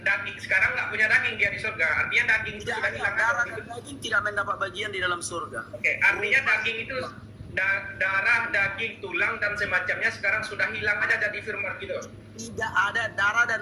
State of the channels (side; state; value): both; identical; correlation 1.00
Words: daging sekarang nggak punya daging dia di surga. Artinya daging itu sudah hilang. Darah dan daging tidak mendapat bagian di dalam surga. Oke, artinya daging itu darah, daging, tulang dan semacamnya sekarang sudah hilang aja jadi firman gitu. Tidak ada darah